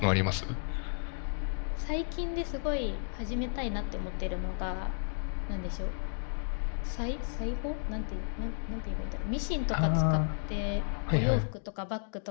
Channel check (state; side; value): silent; right; digital silence